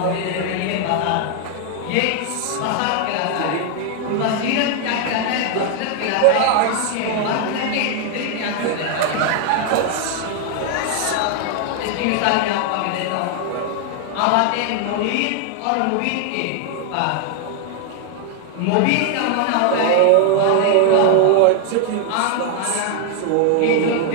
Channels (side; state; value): both; different; correlation 0.00